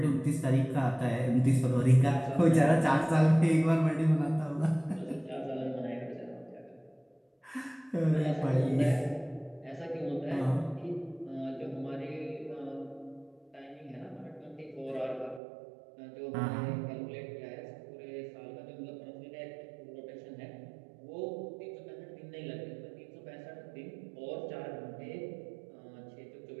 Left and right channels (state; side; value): drops out; left; at 15.4 s